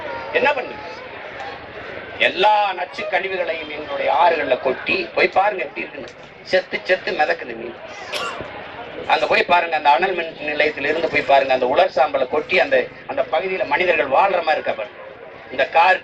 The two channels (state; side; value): identical; both; correlation 1.00